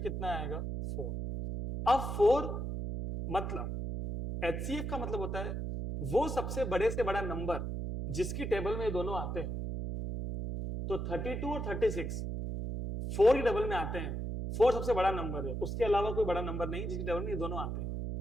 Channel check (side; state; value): right; noise; hum, 3 dB below the sound